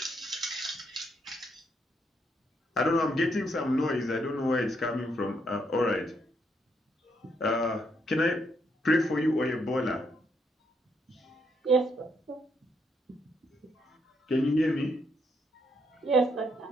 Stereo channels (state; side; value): normal; both; correlation 0.75